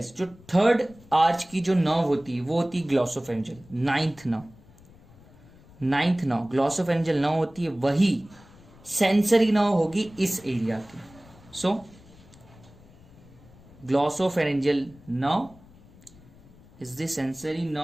जो 3rd आर्च की जो नर्व होती है वो होती है glossopharyngeal. 9th nerve glossopharyngeal nerve होती है, वही सेंसरी नर्व होगी इस एरिया की। So glossopharyngeal nerve is the sensory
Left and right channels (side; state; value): left; noise; rumble, 24 dB below the sound